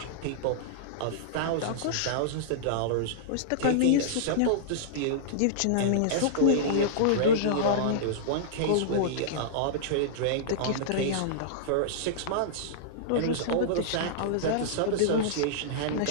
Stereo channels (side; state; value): both; different; correlation -0.02